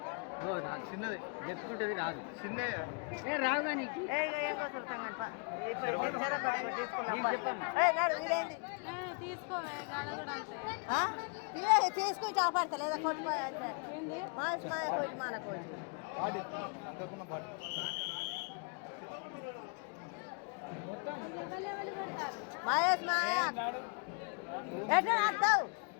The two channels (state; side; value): quieter; right; 36.5 dB